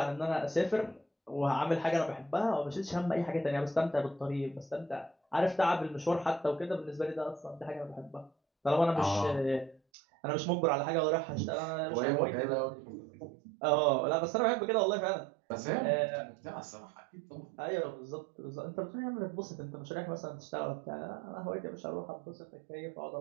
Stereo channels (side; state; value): left; drops out; at 9.8 s